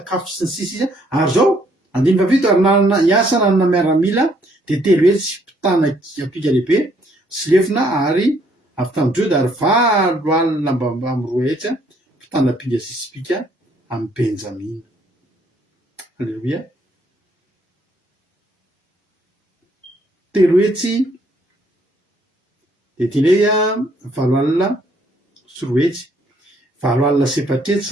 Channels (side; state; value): both; normal; correlation 0.67